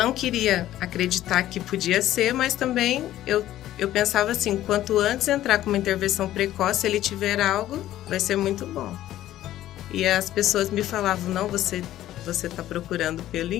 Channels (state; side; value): quieter; right; 13.5 dB